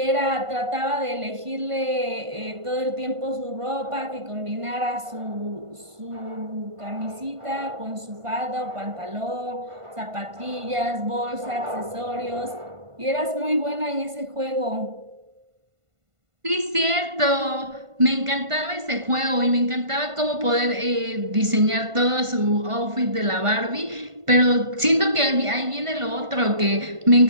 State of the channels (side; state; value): left; late; 1.5 ms